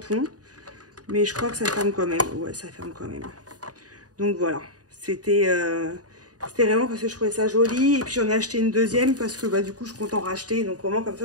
Mais je crois que ça ferme quand même. Ouais, ça ferme quand même. Donc, voilà. C'était vraiment parce que je trouvais ça joli. Et puis, j'en ai acheté une deuxième parce que, bah, du coup, je compte en racheter. Donc, au moins, comme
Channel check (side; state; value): left; late; 0.68 ms